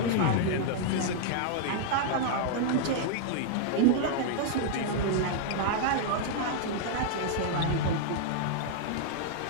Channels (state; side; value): different; both; correlation -0.01